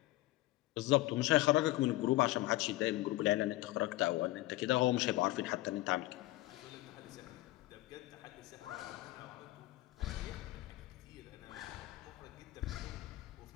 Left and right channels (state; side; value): quieter; right; 17.8 dB